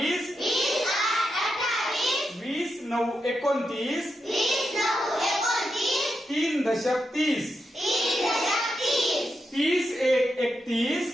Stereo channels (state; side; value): normal; both; correlation 0.86